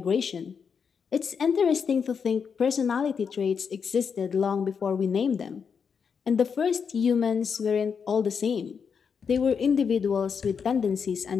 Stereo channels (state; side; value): quieter; right; 6.3 dB